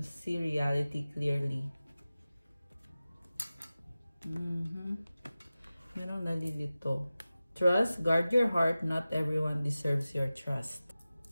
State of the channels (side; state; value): both; inverted; correlation -0.96